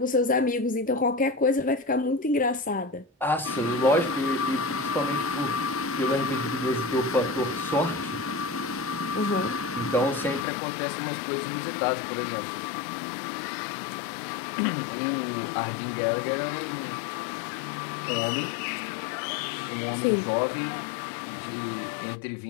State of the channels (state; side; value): drops out; right; at 10.5 s